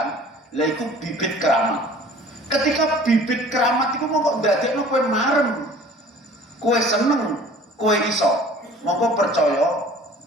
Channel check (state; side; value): normal; both; correlation 0.48